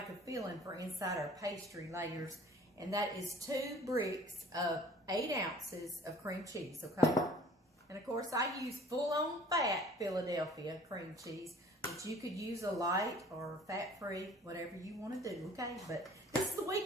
a filling for inside our pastry layers, and that is 2 bricks of 8 ounces of cream cheese, okay? And of course, I use full-on fat Philadelphia cream cheese, but you could use a light or fat-free, whatever you want to do, okay? But this is the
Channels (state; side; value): normal; both; correlation 0.50